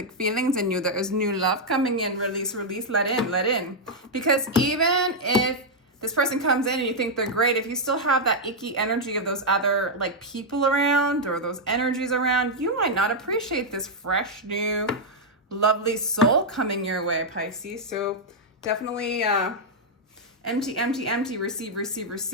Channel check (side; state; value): both; normal; correlation -0.03